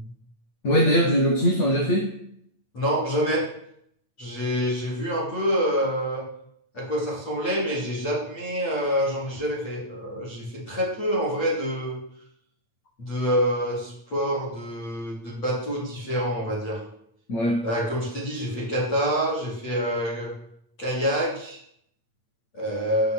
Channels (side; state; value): right; late; 8.8 ms